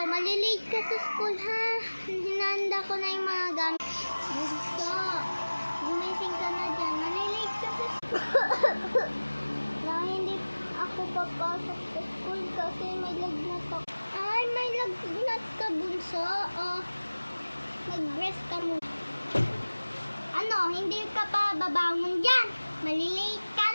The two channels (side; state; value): both; inverted; correlation -1.00